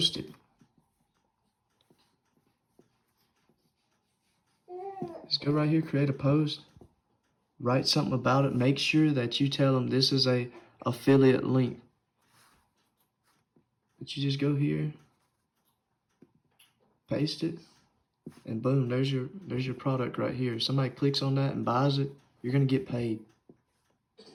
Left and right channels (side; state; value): both; identical; correlation 1.00